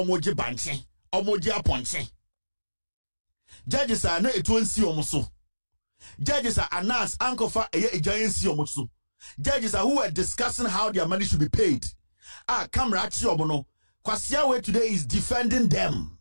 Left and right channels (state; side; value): inverted; both; correlation -1.00